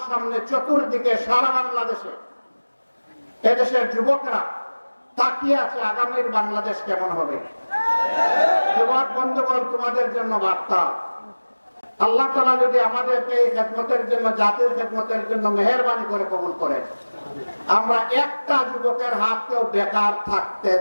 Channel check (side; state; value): both; inverted; correlation -1.00